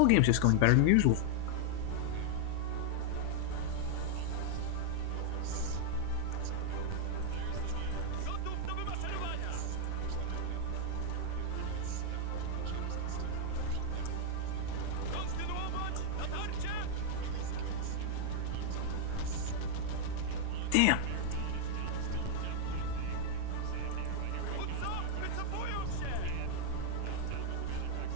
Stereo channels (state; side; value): different; both; correlation -0.01